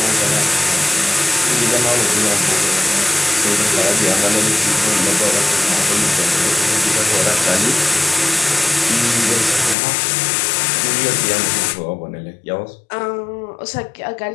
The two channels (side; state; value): right; drops out; at 9.8 s